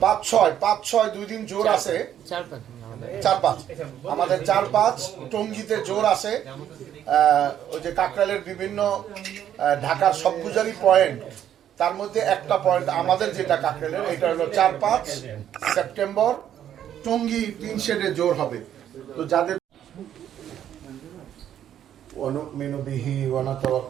5-6 2 দিন জোর আছে, 4-5 আমাদের 4-5 টঙ্গীতে জোর আছে। ওই যে কাকরাইলের বিভিন্ন ঢাকার সবগুজারি পয়েন্ট, তার মধ্যে একটা পয়েন্ট আমাদের যেটা কাকরাইলের, এটা হলো 4-5 সেপ্টেম্বর টঙ্গী 3 শেডে জোর হবে। তো যাদের ونؤمن به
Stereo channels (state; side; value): quieter; left; 10.4 dB